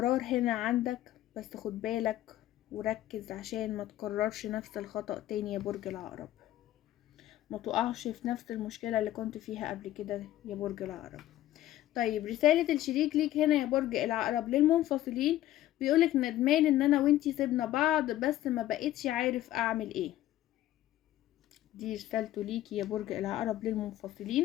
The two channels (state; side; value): quieter; right; 14.1 dB